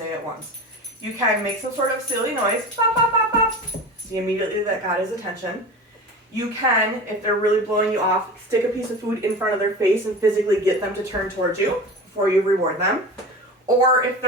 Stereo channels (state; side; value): normal; both; correlation 0.32